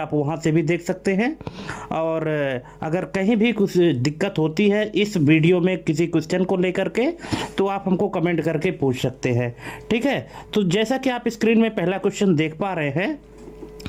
वहां से भी देख सकते हैं। और अगर कहीं भी कुछ दिक्कत होती है इस वीडियो में किसी क्वेश्चन को लेकर के, तो आप हमको कमेंट करके पूछ सकते हैं, ठीक है। तो जैसा कि आप स्क्रीन में पहला क्वेश्चन देख पा रहे हैं,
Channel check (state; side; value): identical; both; correlation 1.00